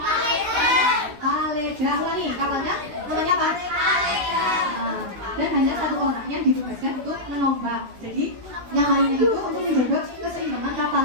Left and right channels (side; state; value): left; late; 16 ms